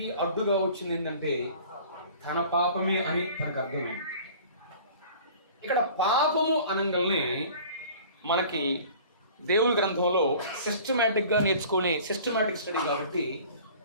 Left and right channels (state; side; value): inverted; both; correlation -0.46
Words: అడ్డుగా వచ్చింది ఏంటంటే తన పాపమే అని తనకు అర్థమైంది. ఇక్కడ పాపము అనగానే మనకి దేవుని గ్రంథంలో సిస్టమేటిక్గా నేర్చుకునే సిస్టమేటిక్ స్టడీ కాబట్టి